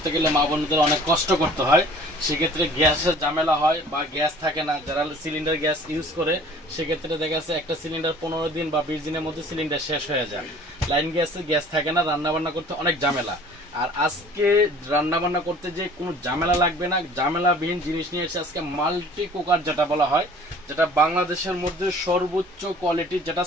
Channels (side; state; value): both; normal; correlation 0.50